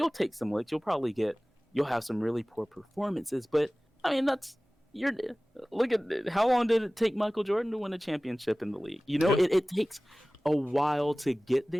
take some licks. You'll have some really poor performances, but I mean you're look at how long did it take Michael Jordan to win a championship in the league? Yeah. It takes a while to get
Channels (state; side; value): normal; both; correlation 0.98